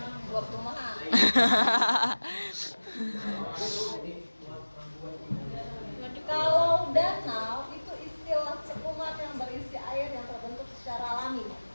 dua perumahan. Kalau danau itu istilah cekungan yang berisi air yang terbentuk secara alami.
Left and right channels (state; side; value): inverted; both; correlation -1.00